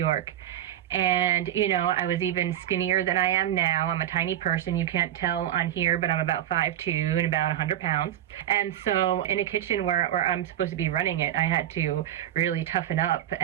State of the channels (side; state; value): left; quieter; 11.6 dB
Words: And, you know, I was even skinnier than I am now. I'm a tiny person. You can't tell on here, but I'm about 5'2" and about 100 pounds. And so in a kitchen where I'm supposed to be running it, I had to really toughen up